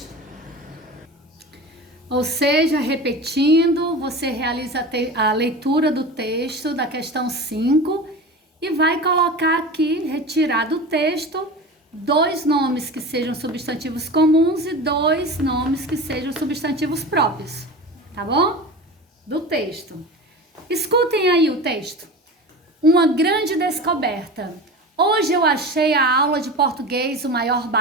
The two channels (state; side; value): normal; both; correlation 0.31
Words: Ou seja, repetindo, você realiza a leitura do texto da questão 5 e vai colocar aqui, retirar do texto, 2 nomes que sejam substantivos comuns e 2 nomes que sejam substantivos próprios, tá bom? Do texto. Escutem aí o texto. Uma grande descoberta. Hoje eu achei a aula de português o maior